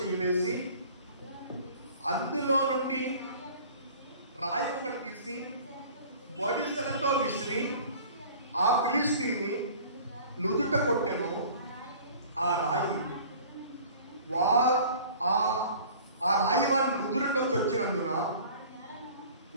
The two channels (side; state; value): both; inverted; correlation -0.46